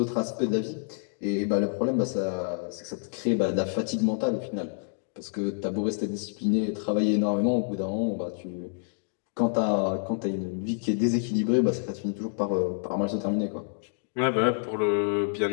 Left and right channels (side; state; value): right; silent; digital silence